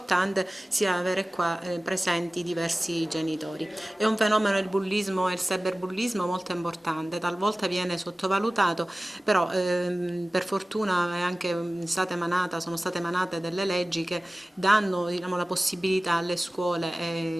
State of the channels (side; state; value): both; normal; correlation 0.96